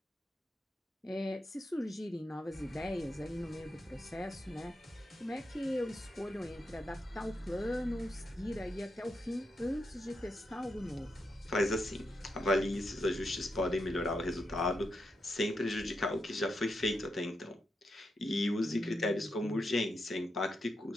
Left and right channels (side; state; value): both; normal; correlation 0.84